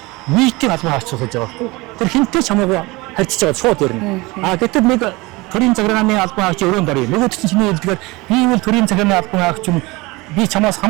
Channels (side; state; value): left; quieter; 23.1 dB